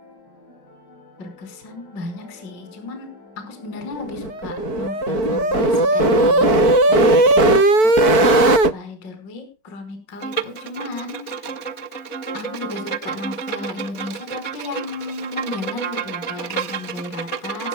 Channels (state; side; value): late; right; 4.6 ms